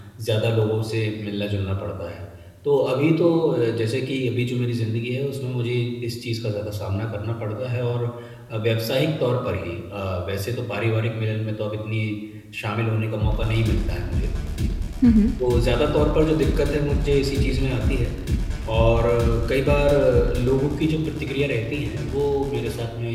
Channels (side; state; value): both; identical; correlation 1.00